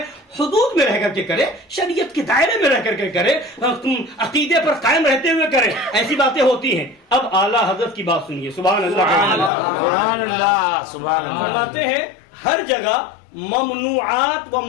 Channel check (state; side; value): drops out; right; at 9.5 s